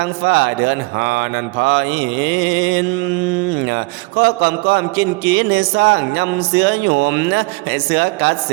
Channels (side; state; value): left; quieter; 26.7 dB